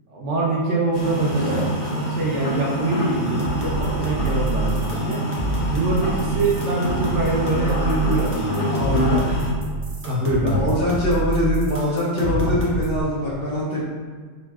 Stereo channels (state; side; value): normal; both; correlation 0.03